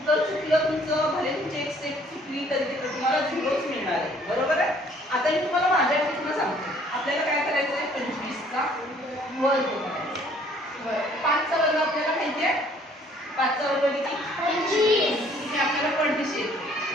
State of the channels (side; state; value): both; normal; correlation 0.59